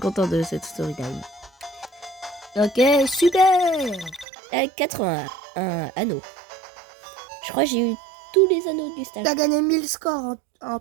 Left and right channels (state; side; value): drops out; left; at 4.2 s